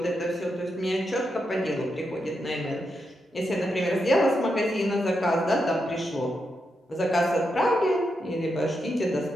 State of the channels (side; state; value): both; normal; correlation 0.84